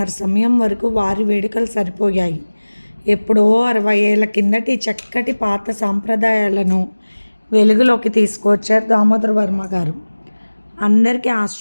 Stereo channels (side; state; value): both; inverted; correlation -1.00